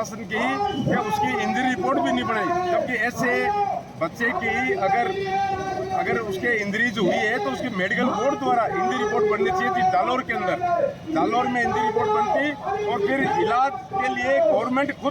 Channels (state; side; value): identical; both; correlation 1.00